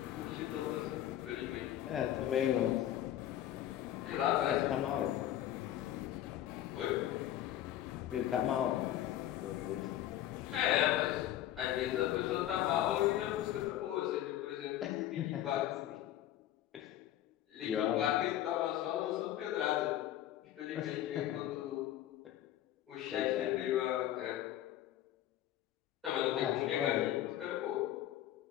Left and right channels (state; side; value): quieter; right; 12.5 dB